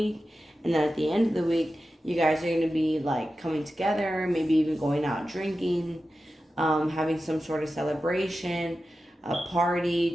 And then at the end of the week, you guys are going to be like coming together, maybe even going out drinking, having some sort of celebration, a party,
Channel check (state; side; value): normal; both; correlation 0.93